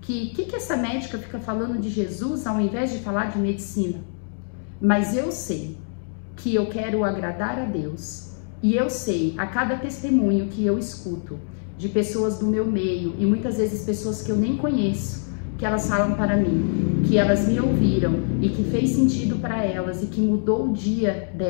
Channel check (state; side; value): silent; right; 63 dB below the other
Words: que essa médica fica falando de Jesus ao invés de falar de medicina. Mas eu sei que eu quero agradar a Deus, e eu sei a cada testemunho que eu escuto de pessoas do meu meio, e muitas vezes pessoas que eu nem conheço, que elas falam para mim, que elas me ouviram e que fez sentido para elas e que mudou o dia